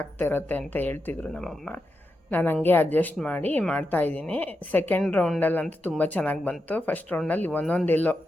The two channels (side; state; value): both; normal; correlation 0.87